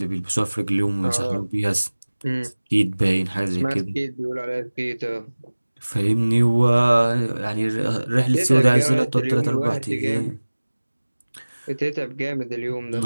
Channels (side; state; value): both; inverted; correlation -1.00